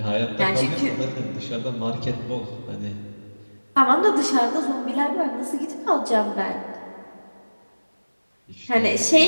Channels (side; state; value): both; inverted; correlation -1.00